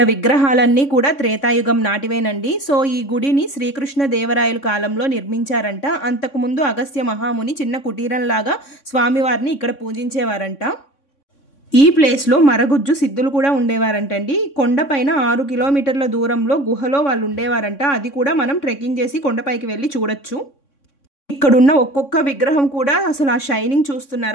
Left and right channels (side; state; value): right; late; 3.6 ms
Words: విగ్రహాలన్నీ కూడా త్రేతాయుగం నాటివేనండి. సో ఈ గుడిని శ్రీకృష్ణ దేవరాయల కాలంలో నిర్మించారంట. అంతకుముందు అగస్త్య మహాముని చిన్న కుటీరంలాగా స్వామివారిని ఇక్కడ పూజించేవారంట. ఈ ప్లేస్లో మరగుజ్జు సిద్ధులు కూడా ఉండేవారంటండి. కొండపైన 6 కిలోమీటర్ల దూరంలో గుహలో వాళ్ళు ఉండేవారంట. అది కూడా మనం ట్రెక్కింగ్ చేసి కొండపైకి వెళ్ళి చూడొచ్చు. ఇక్కడున్న ఒక్కొక్క విగ్రహం కూడా అసలు ఆ షైనింగ్